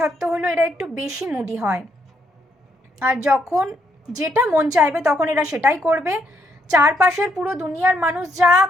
হলো এরা একটু বেশি মুডি হয়, আর যখন যেটা মন চাইবে তখন এরা সেটাই করবে। চারপাশের পুরো দুনিয়ার মানুষ যা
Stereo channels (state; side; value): normal; both; correlation 0.74